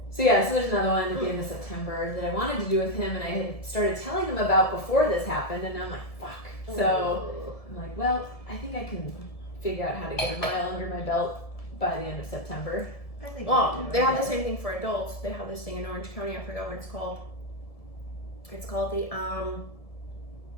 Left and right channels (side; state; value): right; late; 1.7 ms